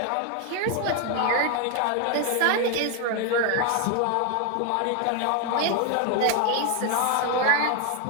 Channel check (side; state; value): both; different; correlation 0.01